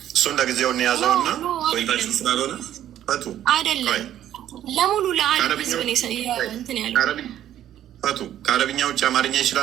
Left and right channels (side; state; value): left; quieter; 11.6 dB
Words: እሱን ለጊዜውን የያዘውና ወይታችን ስላልሆነ ፈቱ አይደለም፣ ለሙሉ ለዓለም ህዝብ ነው እንትን ያለው። ፈቱ ከአረብኛ ውጭ አማርኛ